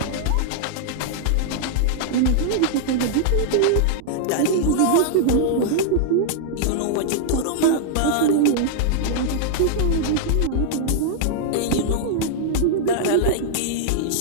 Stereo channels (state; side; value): different; both; correlation -0.01